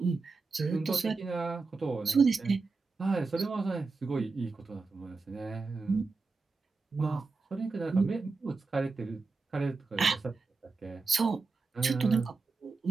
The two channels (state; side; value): quieter; left; 4.1 dB